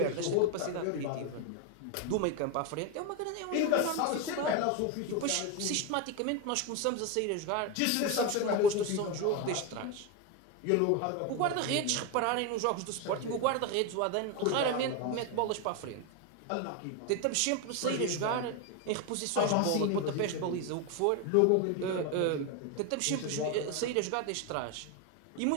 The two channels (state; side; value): different; both; correlation 0.02